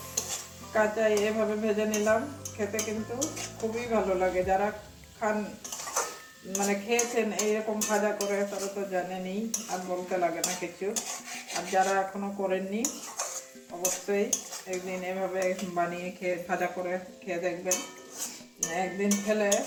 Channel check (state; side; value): identical; both; correlation 1.00